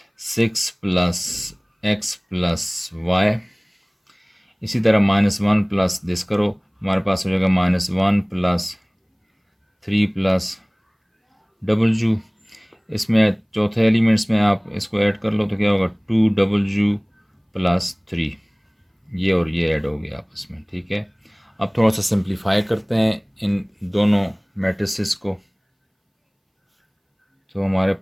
6 प्लस x प्लस y। इसी तरह -1 प्लस दिस करो, हमारे पास हो जाएगा -1 प्लस 3 प्लस w। इसमें चौथे एलिमेंट्स में आप इसको ऐड कर लो तो क्या होगा 2w प्लस 3। ये और ये ऐड हो गया आपस में, ठीक है। अब थोड़ा सा सिंप्लीफाई करते हैं इन दोनों मैट्रिसेस को, तो हमारे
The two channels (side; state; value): both; identical; correlation 1.00